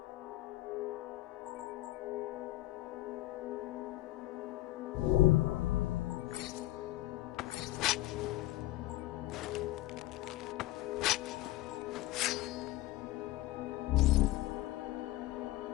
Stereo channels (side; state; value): right; quieter; 17.3 dB